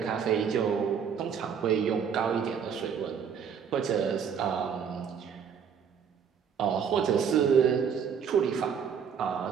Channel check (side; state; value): left; quieter; 7.2 dB